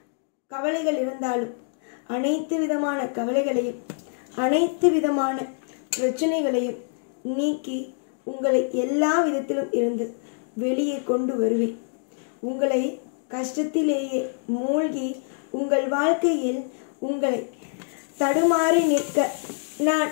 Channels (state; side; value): silent; right; 61 dB below the other